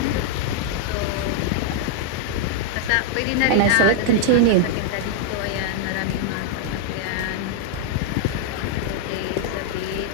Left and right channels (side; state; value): both; different; correlation -0.01